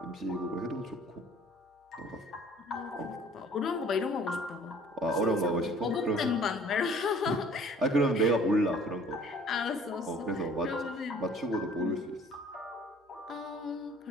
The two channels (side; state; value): both; normal; correlation 0.53